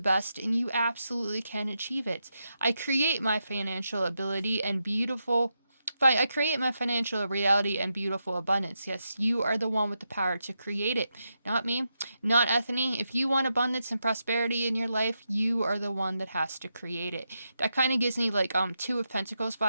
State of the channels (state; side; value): inverted; both; correlation -0.86